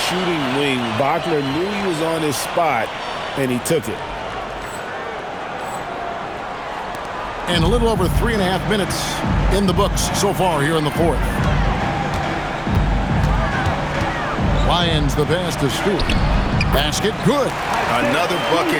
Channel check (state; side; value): identical; both; correlation 1.00